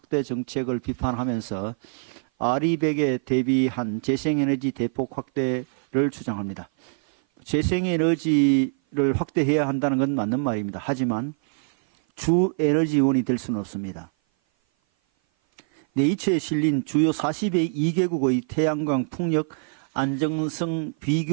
정책을 비판하면서 R200에 대비한 재생에너지 대폭 확대를 주장합니다. 재생에너지를 확대해야 한다는 건 맞는 말입니다. 하지만 주 에너지원이 될 수는 없습니다. 네이처에 실린 주요 42개국의 태양광 풍력 안정성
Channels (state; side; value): silent; left; 56 dB below the other